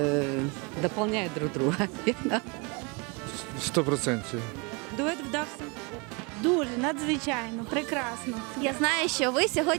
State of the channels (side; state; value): left; quieter; 29.8 dB